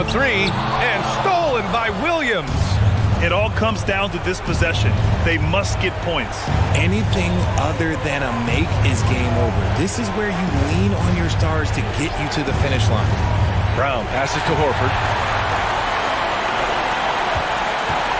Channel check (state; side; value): identical; both; correlation 1.00